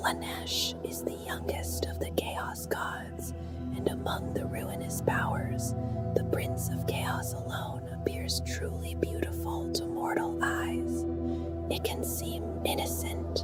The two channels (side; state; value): both; identical; correlation 1.00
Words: is the youngest of the Chaos Gods, and among the ruinous powers, the Prince of Chaos alone appears truly beautiful to mortal eyes. It can seem